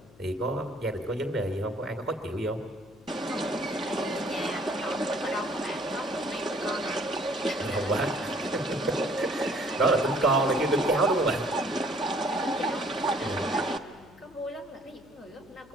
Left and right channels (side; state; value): left; noise; hum, 24 dB below the sound